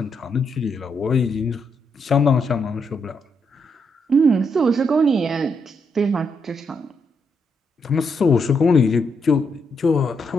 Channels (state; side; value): normal; both; correlation 0.79